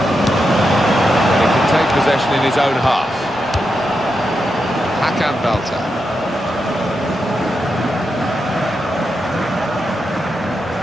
Take possession in his own half. Hakan Belter.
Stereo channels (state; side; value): normal; both; correlation 0.86